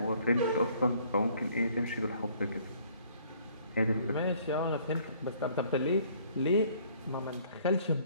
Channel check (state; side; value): inverted; both; correlation -0.60